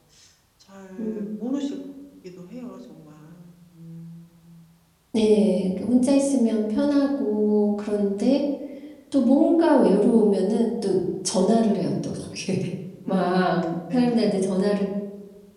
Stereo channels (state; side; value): identical; both; correlation 1.00